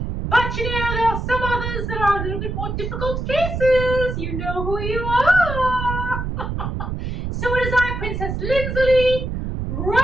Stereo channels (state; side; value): noise; right; rumble, 4 dB below the sound